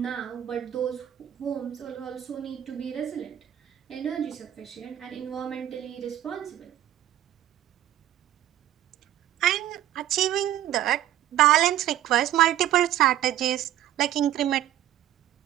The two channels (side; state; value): left; quieter; 12.4 dB